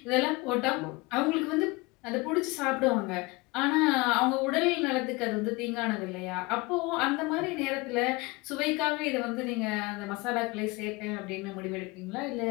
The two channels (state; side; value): quieter; right; 24.4 dB